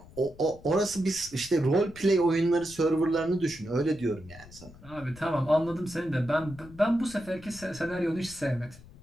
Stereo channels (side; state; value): left; noise; rumble, 20 dB below the sound